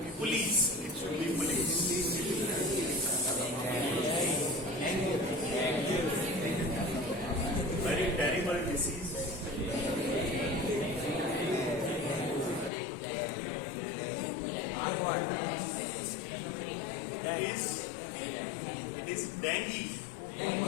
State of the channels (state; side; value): drops out; right; at 12.7 s